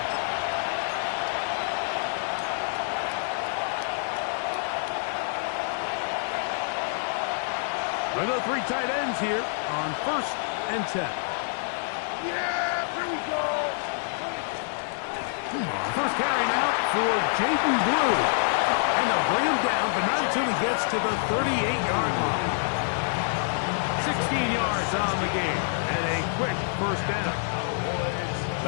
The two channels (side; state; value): right; silent; digital silence